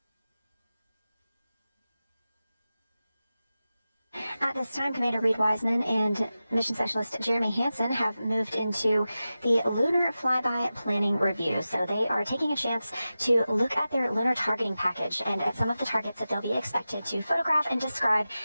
At this time, Commander Reed Wiseman and Mission Specialist Jeremy Hansen have moved into the Lunar Flyby Planning Review. So they are taking a chance to look at their lunar targeting package and at some of the targets that they'll be expected to photograph and describe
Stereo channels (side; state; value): both; inverted; correlation -0.94